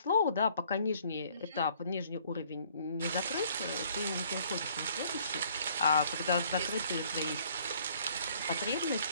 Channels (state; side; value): inverted; both; correlation -0.60